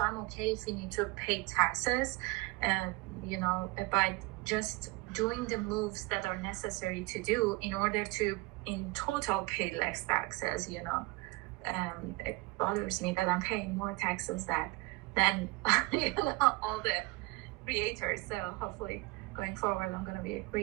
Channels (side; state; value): left; quieter; 22.9 dB